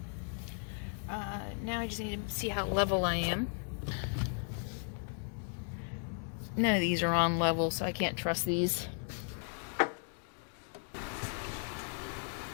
Now I just need to see how level I am. None of these are on level, so I can't trust these.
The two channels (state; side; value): silent; right; 54 dB below the other